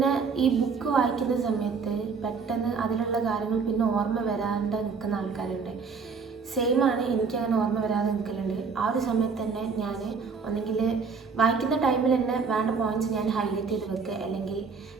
ഈ ബുക്ക് വായിക്കുന്ന സമയത്ത് പെട്ടെന്ന് അതിലുള്ള കാര്യങ്ങൾ പിന്നെ ഓർമ്മ വരാണ്ട് നിൽക്കുന്ന ആൾക്കാരുണ്ട്. സെയിമാണ്, എനിക്കങ്ങനെ ഓർമ്മ വരാതെ നിൽക്കലുണ്ട്. ആ ഒരു സമയത്ത് തന്നെ ഞാൻ ഒന്നെങ്കിൽ വായിക്കുന്ന ടൈമിൽ തന്നെ വേണ്ട പോയിൻറ്റ്സ് ഞാൻ ഹൈലൈറ്റ് ചെയ്ത് വെക്കുക, അല്ലെങ്കിൽ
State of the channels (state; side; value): quieter; left; 5.3 dB